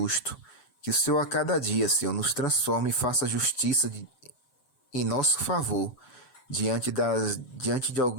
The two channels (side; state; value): right; late; 7.8 ms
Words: Que o Senhor a cada dia, Senhor, nos transforme e faça justiça em nosso favor, diante de